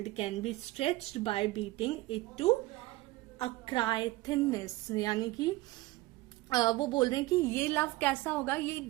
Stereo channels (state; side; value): quieter; left; 19.4 dB